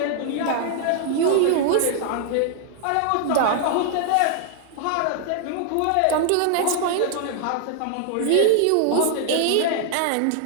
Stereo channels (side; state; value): both; different; correlation -0.01